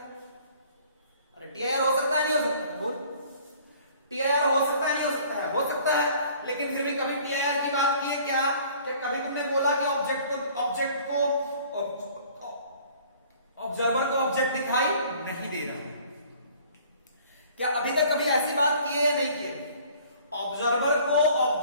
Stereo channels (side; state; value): both; inverted; correlation -0.53